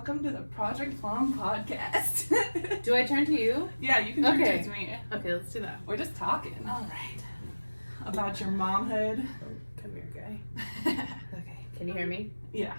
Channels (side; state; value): both; inverted; correlation -1.00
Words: to the Project Plum Podcast. Do I turn to you? Yeah, you can turn to me. Okay, let's do that. We're just talking. All right. About your momhood. Come here, guy. Okay. Can you hear me? Yeah.